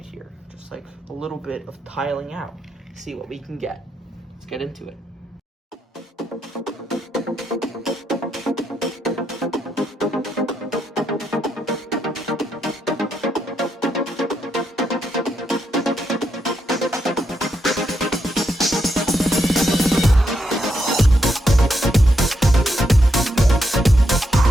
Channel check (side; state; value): both; normal; correlation 0.80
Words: here. Just like a little bit of tiling out. See what we can get. Let's get into it.